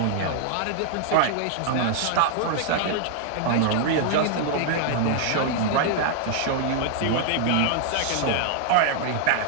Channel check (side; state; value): both; different; correlation 0.00